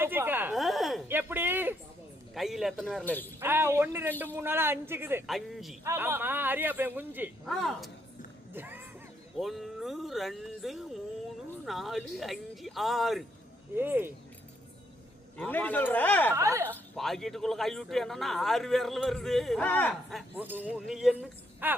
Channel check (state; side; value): normal; both; correlation 0.74